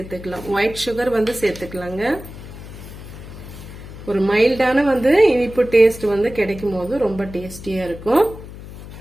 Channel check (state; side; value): noise; left; hum, 14 dB below the sound